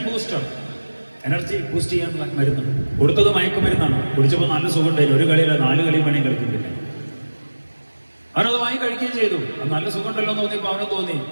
ബൂസ്റ്റ് ചെയ്യാനുള്ള മരുന്ന്. കൊടുത്തത് മയക്കുമരുന്നാണ്. കുടിച്ചപ്പോൾ നല്ല സുഖം ഉണ്ടായിരുന്നു. ഒരു കളിയല്ല 4 കളിയും വേണമെങ്കിൽ കളിക്കുന്നില്ല. അവനത് വാങ്ങി കഴിക്കുകയും ചെയ്തു. അത് നല്ല സുഖം ഉണ്ടല്ലോ എന്ന് തോന്നിയപ്പോൾ അവന് തോന്നി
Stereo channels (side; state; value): both; inverted; correlation -1.00